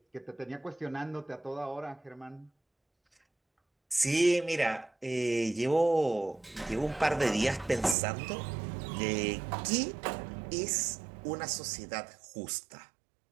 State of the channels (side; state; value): left; drops out; at 8.0 s